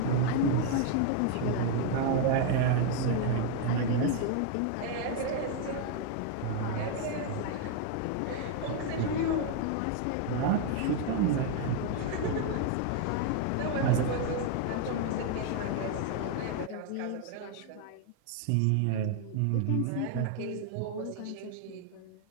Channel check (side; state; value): both; different; correlation 0.00